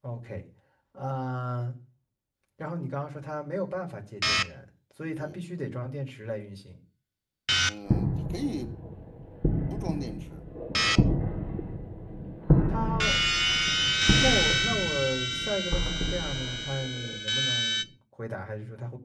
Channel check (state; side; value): identical; both; correlation 1.00